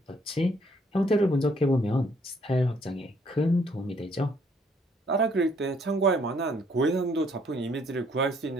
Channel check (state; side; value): normal; both; correlation 0.65